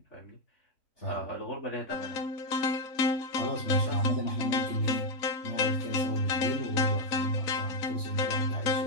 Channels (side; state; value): right; late; 4.0 ms